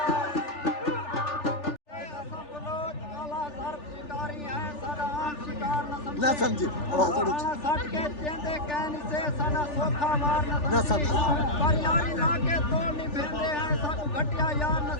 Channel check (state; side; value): late; right; 3.4 ms